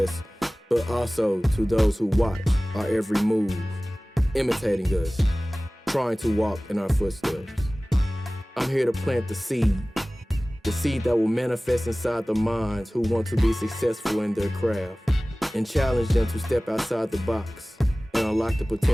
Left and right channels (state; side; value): normal; both; correlation 0.98